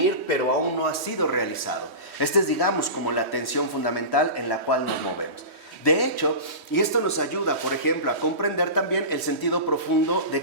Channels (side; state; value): left; late; 3.1 ms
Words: pero aún no ha sido realizado. Esta es, digamos, como la tensión fundamental en la cual nos movemos. De hecho, y esto nos ayuda, por ejemplo, a comprender también el sentido profundo